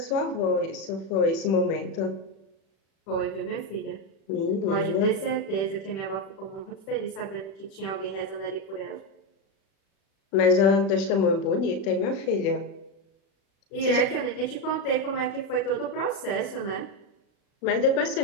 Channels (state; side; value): late; right; 36 ms